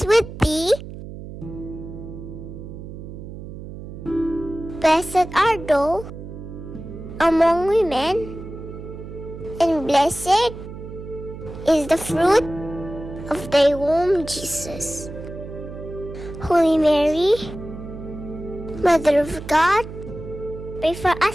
with thee. Blessed art thou among women, and blessed is the fruit of thy womb, Jesus. Holy Mary, Mother of God, pray for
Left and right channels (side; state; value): right; noise; hum, 12 dB below the sound